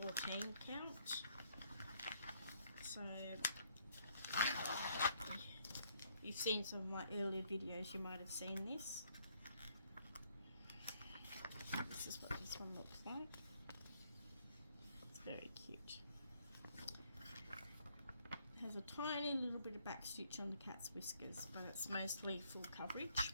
count. So you've seen some of my earlier videos, you might have seen this. This is what this one looks like. It's very cute. It has a tiny little bit of back stitch on the cat's whiskers, but it's mostly full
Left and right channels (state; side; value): inverted; both; correlation -0.67